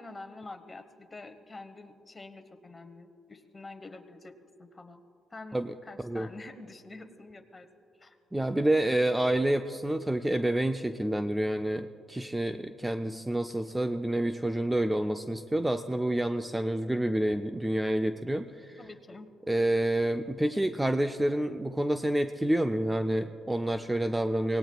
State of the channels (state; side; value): normal; both; correlation 0.97